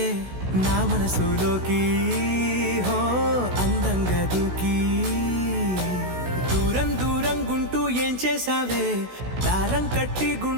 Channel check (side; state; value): left; late; 16 ms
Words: నా మనసులోకి, హో అందంగా దూకి. దూరం దూరం గుంటూ ఏం చేసావే, దారం కట్టి